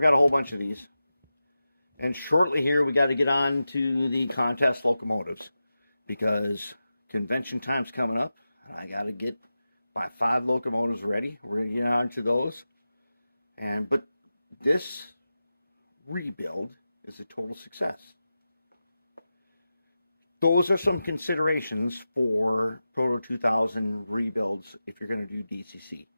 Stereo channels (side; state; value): both; inverted; correlation -0.93